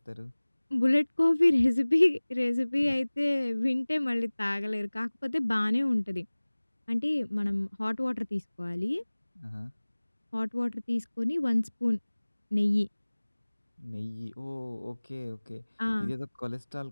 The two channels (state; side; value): inverted; both; correlation -1.00